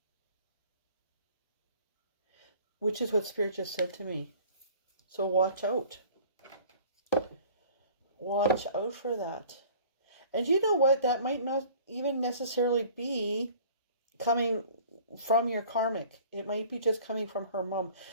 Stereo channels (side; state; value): both; inverted; correlation -0.49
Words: Which is what Spirit just said to me. So watch out. Watch out for that. And you know what? That might not even necessarily be coming from your karmic. It might be just coming from her mom.